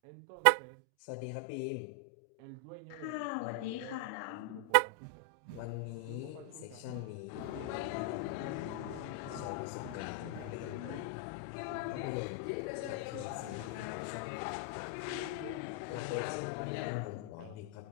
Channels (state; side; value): different; both; correlation 0.00